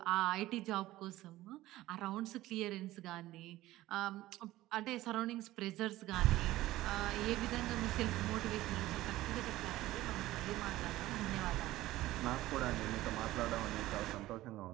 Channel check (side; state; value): left; quieter; 16.4 dB